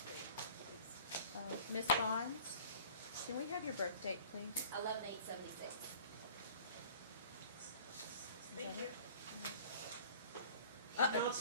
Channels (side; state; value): both; inverted; correlation -0.47